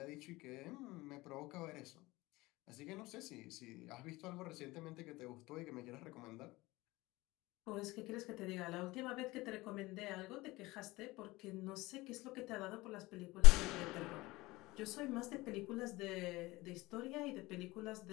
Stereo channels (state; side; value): quieter; right; 20.7 dB